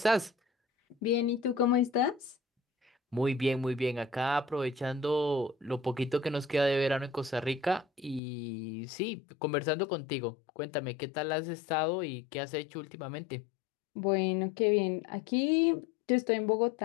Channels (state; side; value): drops out; right; at 8.2 s